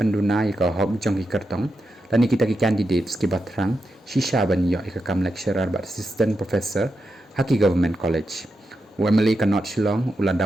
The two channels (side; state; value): both; normal; correlation 0.87